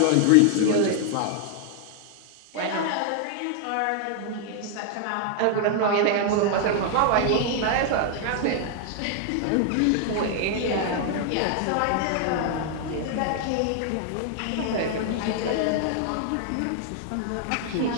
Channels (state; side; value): different; both; correlation 0.00